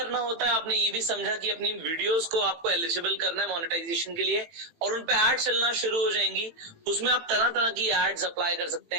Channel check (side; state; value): left; late; 18 ms